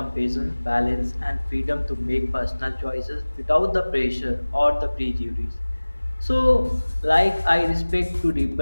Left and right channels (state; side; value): inverted; both; correlation -1.00